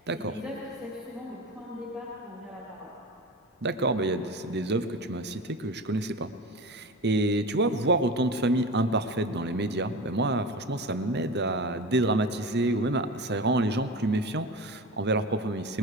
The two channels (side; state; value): both; normal; correlation 0.29